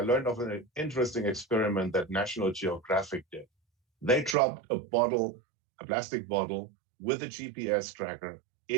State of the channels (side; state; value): left; drops out; at 4.4 s